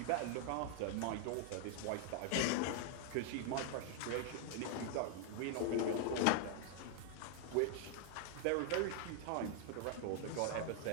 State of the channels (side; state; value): both; different; correlation 0.00